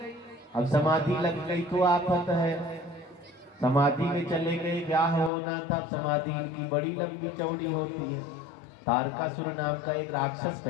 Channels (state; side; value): drops out; right; at 5.3 s